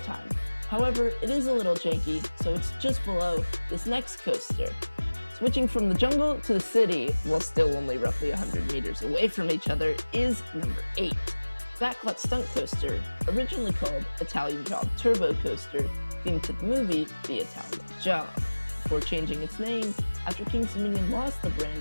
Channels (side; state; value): both; inverted; correlation -1.00